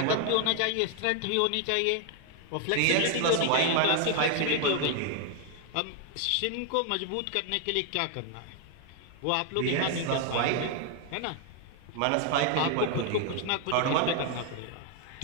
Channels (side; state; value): both; different; correlation 0.00